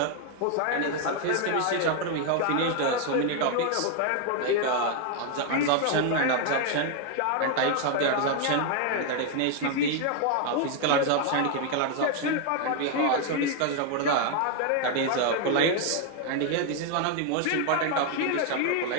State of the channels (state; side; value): different; both; correlation 0.01